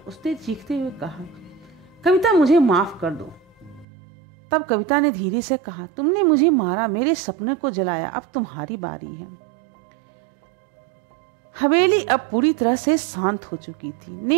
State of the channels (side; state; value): left; drops out; at 3.9 s